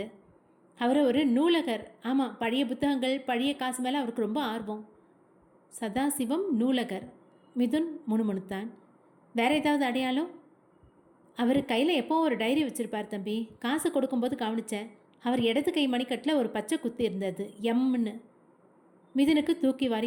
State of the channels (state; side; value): identical; both; correlation 1.00